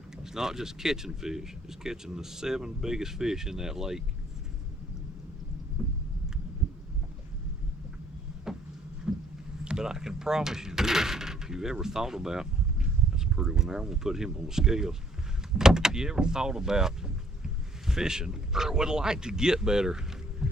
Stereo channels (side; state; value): both; normal; correlation 0.64